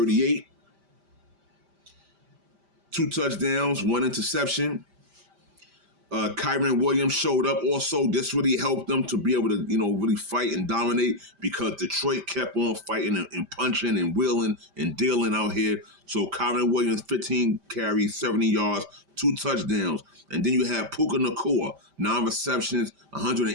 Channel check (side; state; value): left; late; 5.1 ms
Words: 2 touchdowns, 1 interception. Kyren Williams showed up also. This really helped them to be able to, really fight and dominate because Detroit kept on fighting and punching and wheeling and dealing out here. So Kyren Williams, 15 carries, 70 yards, 2 touchdowns. And then you have Puka Nacua, 9 receptions,